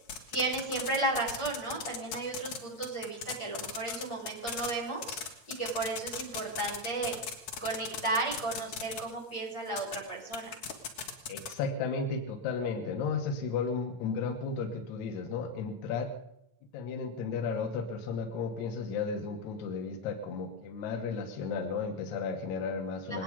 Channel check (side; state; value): right; late; 9.2 ms